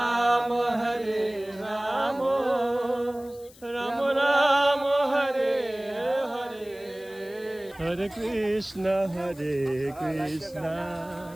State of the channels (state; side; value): noise; left; hiss, 23 dB below the sound